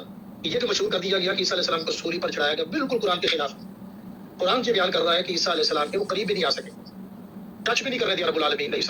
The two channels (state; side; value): identical; both; correlation 1.00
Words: ہے، یہ جو مشہور کر دیا گیا کہ عیسیٰ علیہ السلام کو سولی پر چڑھایا گیا، بالکل قرآن کے خلاف۔ قرآن یہ بیان کر رہا ہے کہ عیسیٰ علیہ السلام کے وہ قریب بھی نہیں آ سکے، ٹچ بھی نہیں کر رہے تھے رب العالمین علیہ